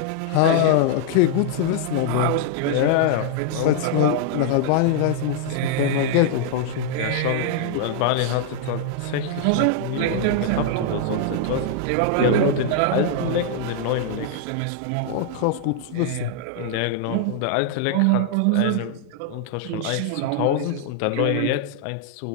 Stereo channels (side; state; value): both; different; correlation -0.01